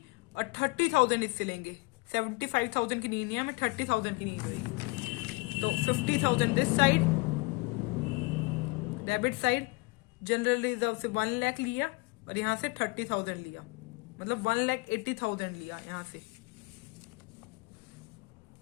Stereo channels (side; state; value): right; quieter; 25.9 dB